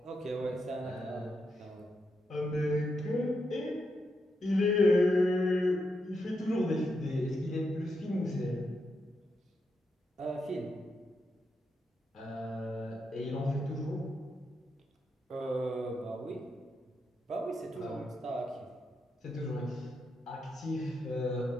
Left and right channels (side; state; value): both; normal; correlation 0.83